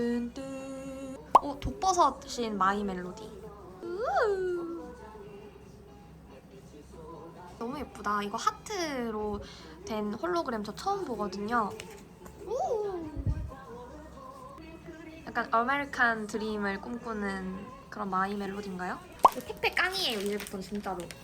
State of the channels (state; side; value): identical; both; correlation 1.00